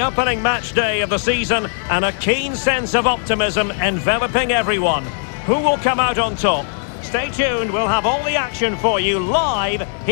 opening match day of the season and a keen sense of optimism enveloping everyone. Who will come out on top? Stay tuned, we'll have all the action for you live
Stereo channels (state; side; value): silent; right; 59 dB below the other